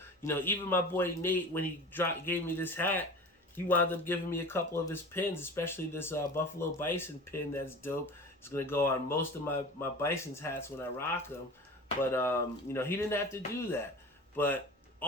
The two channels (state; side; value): normal; both; correlation 0.36